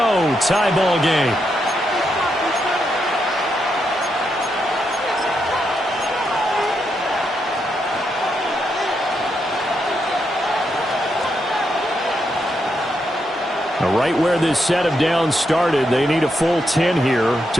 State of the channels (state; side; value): normal; both; correlation 0.81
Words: Tie ball game. Right where this set of downs started, they need a full 10 here